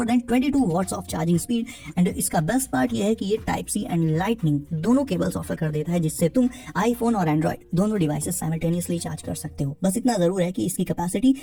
than 22 watts of charging speed and इसका बेस्ट पार्ट ये है कि ये टाइप सी एंड लाइटनिंग दोनों केबल्स ऑफर कर देता है, जिससे तुम आईफोन और एंड्रॉइड दोनों डिवाइसेस साइमल्टेनियसली चार्ज कर सकते हो। बस इतना जरूर है कि इसकी कैपेसिटी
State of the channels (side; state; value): both; identical; correlation 1.00